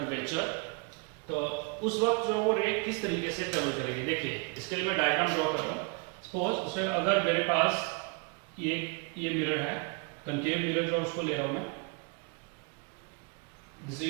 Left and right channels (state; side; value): quieter; left; 32.5 dB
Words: तो उस वक्त जो वो रे किस तरीके से ट्रेवल करेगी। देखिए इसके लिए मैं डायग्राम ड्रॉ कर रहा हूँ। सपोज उसमें अगर मेरे पास ये मिरर है, कनकेव मिरर जो उसको ले रहा हूं मैं, this is